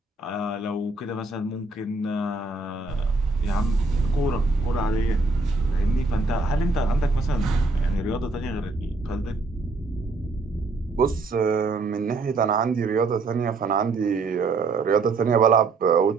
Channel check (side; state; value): left; quieter; 3.5 dB